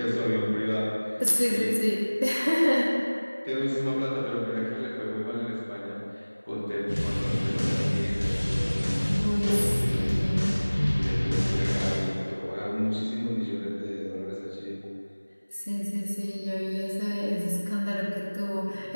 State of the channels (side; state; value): both; inverted; correlation -1.00